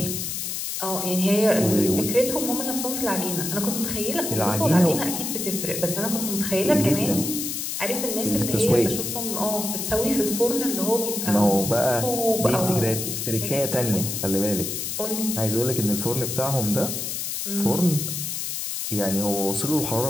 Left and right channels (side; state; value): left; noise; hiss, 3 dB below the sound